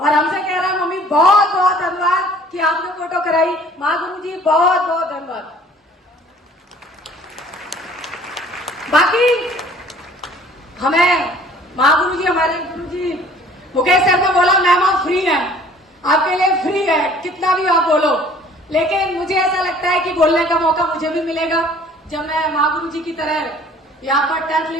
हमसे कह रहा है मम्मी बहुत बहुत धन्यवाद कि आपने फोटो कराई। महागुरु जी बहुत बहुत धन्यवाद। बाकी हमें महागुरु जी, हमारे गुरु जी मुकेश सर ने बोला मैम आप फ्री है, आपके लिए फ्री है, कितना भी आप बोलो। लेकिन मुझे ऐसा लगता है कि बोलने का मौका मुझे भी मिलेगा जब मैं महागुरु जी की तरह यहाँ पर 10th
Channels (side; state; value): both; normal; correlation 0.53